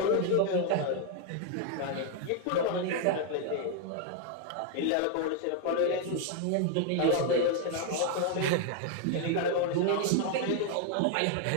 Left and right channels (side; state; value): both; different; correlation 0.00